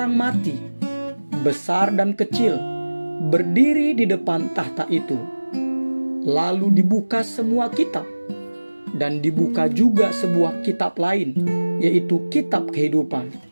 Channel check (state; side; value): inverted; both; correlation -1.00